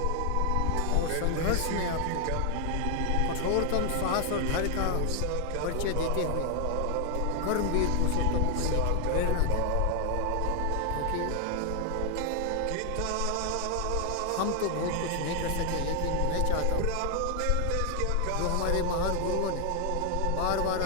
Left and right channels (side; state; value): both; different; correlation 0.00